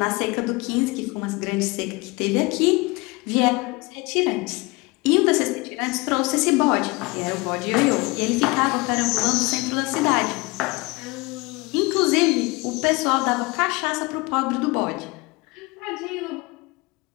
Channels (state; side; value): quieter; right; 24.5 dB